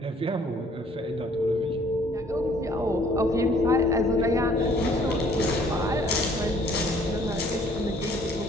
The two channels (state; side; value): normal; both; correlation 0.59